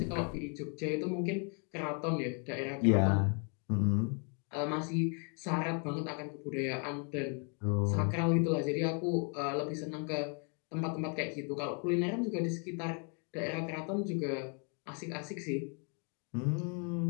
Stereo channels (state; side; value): quieter; right; 37.2 dB